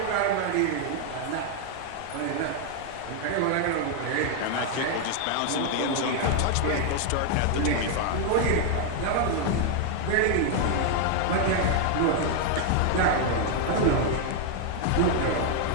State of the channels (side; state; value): both; different; correlation 0.00